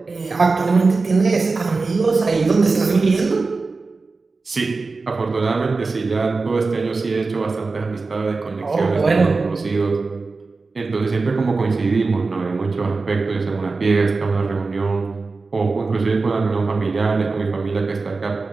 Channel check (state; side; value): quieter; left; 4.0 dB